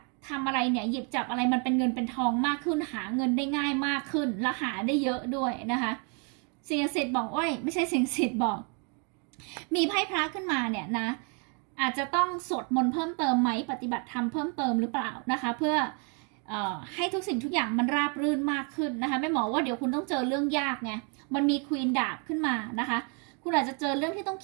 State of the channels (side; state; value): left; quieter; 37.0 dB